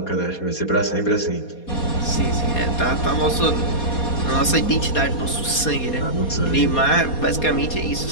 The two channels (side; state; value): right; late; 4.2 ms